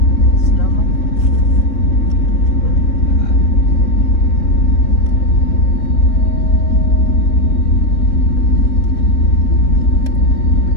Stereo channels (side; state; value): right; late; 3.7 ms